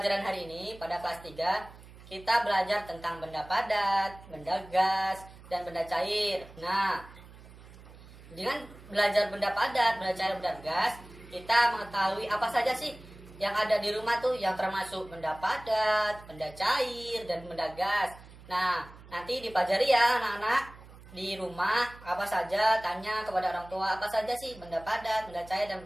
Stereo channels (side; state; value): right; noise; hum, 20 dB below the sound